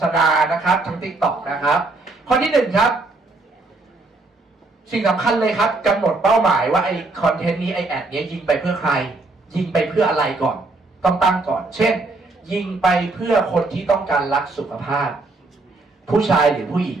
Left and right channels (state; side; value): quieter; left; 3.3 dB